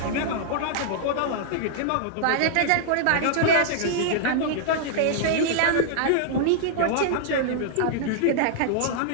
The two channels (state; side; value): different; both; correlation -0.01